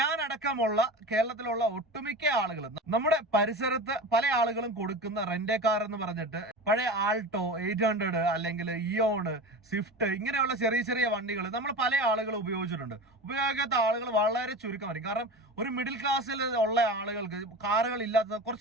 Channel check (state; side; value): normal; both; correlation 0.30